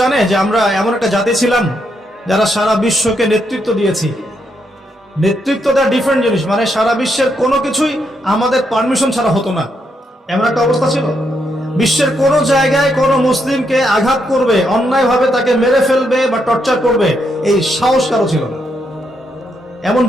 জানে যে আমরা এমন একটা জাতি ছিলাম যারা সারা বিশ্বকে নেতৃত্ব দিয়েছি? নেতৃত্ব দেওয়া ডিফারেন্ট জিনিস, মানে সারা বিশ্বের কোনো কিছুই আমাদের পারমিশন ছাড়া হতো না, এমন একটা অবস্থা ছিল। বিশ্বের কোন জায়গায় কোন মুসলিমকে আঘাত করবে, অন্যায়ভাবে তাকে মেরে ফেলবে বা টর্চার করবে, এই সাহস কারো ছিল না। এমন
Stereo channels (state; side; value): normal; both; correlation 0.79